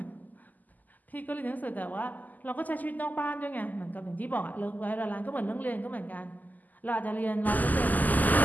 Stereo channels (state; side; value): late; right; 0.082 ms